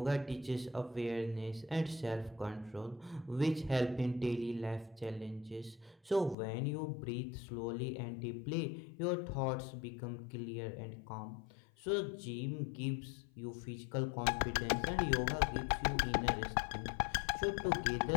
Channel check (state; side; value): drops out; right; at 6.4 s